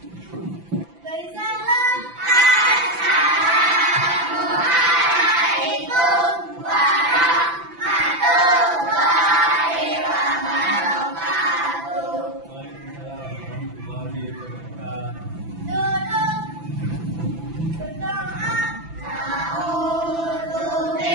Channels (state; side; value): late; left; 5.9 ms